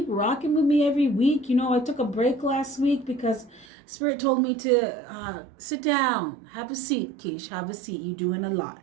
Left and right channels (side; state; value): left; drops out; at 3.7 s